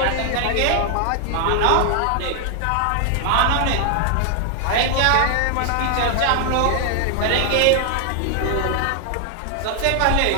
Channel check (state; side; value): different; both; correlation 0.00